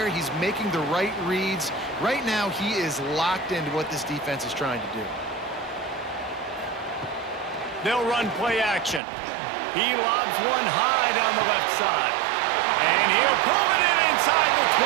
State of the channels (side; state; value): left; drops out; at 9.0 s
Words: he's making the right reads. Right now, he is locked into what this defense is trying to do. They'll run play action. He lobs one high down the left side. And he'll pull it in inside the